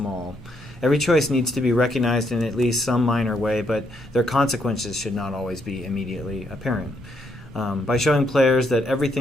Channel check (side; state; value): both; normal; correlation 0.75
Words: Every choice needs to be recognized in at least some minor way, but their consequences should not always be immediately apparent. By showing players that